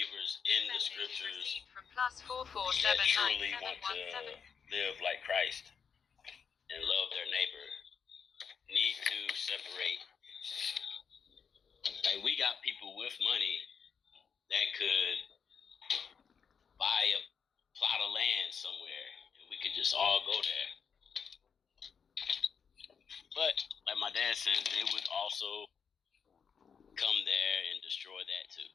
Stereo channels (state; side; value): quieter; right; 6.6 dB